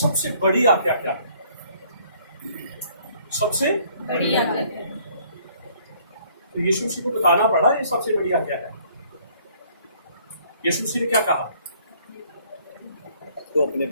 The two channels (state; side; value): inverted; both; correlation -0.61